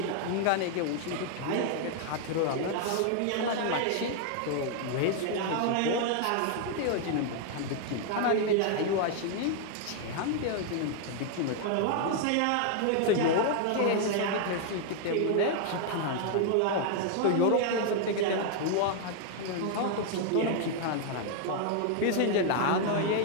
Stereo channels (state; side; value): different; both; correlation 0.00